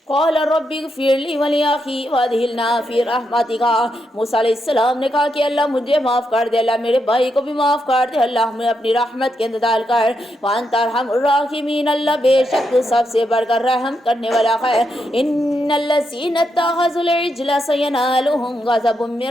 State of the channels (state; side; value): normal; both; correlation 0.82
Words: قَالَ رَبِّ اغْفِرْ لِی وَلِأَخِی وَأَدْخِلْنَا فِی رَحْمَتِکَ، موسیٰ علیہ السلام نے کہا کہ اللہ مجھے معاف کر دے، اللہ میرے بھائی کو بھی معاف کر دے، اللہ ہمیں اپنی رحمت کے اندر ڈال کر۔ وَأَنْتَ أَرْحَمُ الرَّاحِمِينَ، اللہ بے شک تو سب سے بڑھ کر رحم کرنے والا ہے۔ إِنَّ الَّذِینَ اتَّخَذُوا الْعِجْلَ سَيَنَالُهُمْ غَضَبٌ